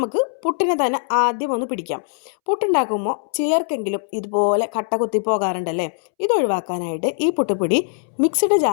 പുട്ടിനെ തന്നെ ആദ്യം ഒന്ന് പിടിക്കാം. പുട്ടുണ്ടാക്കുമ്പോൾ ചിലർക്കെങ്കിലും ഇതുപോലെ കട്ട കുത്തി പോകാറുണ്ടല്ലേ. ഇതൊഴിവാക്കാനായിട്ട് ഈ പുട്ടുപൊടി മിക്സിഡ്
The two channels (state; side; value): silent; right; 65 dB below the other